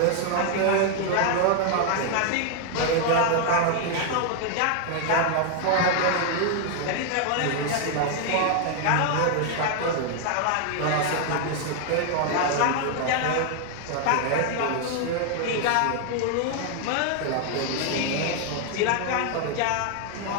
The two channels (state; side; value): different; both; correlation 0.00